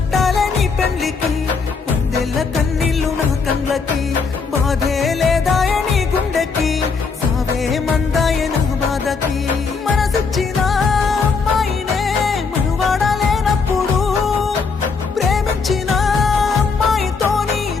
నీ పెండ్లికి, వందెల్ల కన్నీళ్ళు నా కళ్ళకి, బాధే లేదాయ నీ గుండెకి, సావే మందాయ నా బాధకి. మనసిచ్చిన అమ్మాయినే మనువాడలేనప్పుడు, ప్రేమించిన అమ్మాయితోని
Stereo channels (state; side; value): quieter; right; 5.0 dB